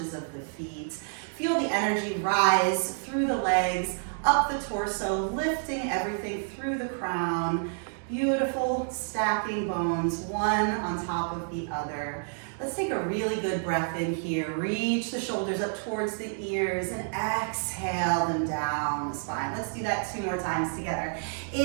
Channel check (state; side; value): silent; left; digital silence